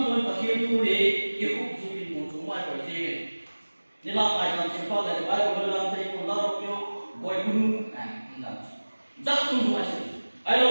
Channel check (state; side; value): inverted; both; correlation -1.00